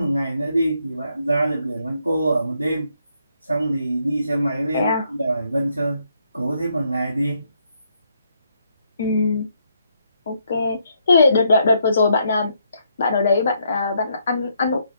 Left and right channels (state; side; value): inverted; both; correlation -0.74